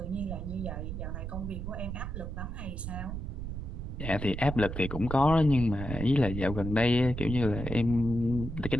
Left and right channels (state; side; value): noise; right; rumble, 6 dB below the sound